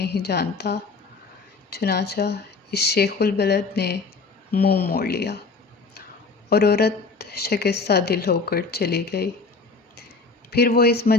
جانتا۔ چنانچہ اس شیخ البلد نے منہ موڑ لیا اور عورت شکستہ دل ہو کر چلی گئی۔ پھر وہ اس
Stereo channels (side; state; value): right; quieter; 4.2 dB